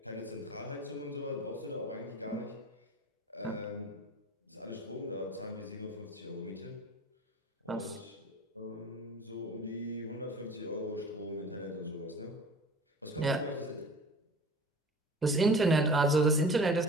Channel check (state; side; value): normal; both; correlation 0.41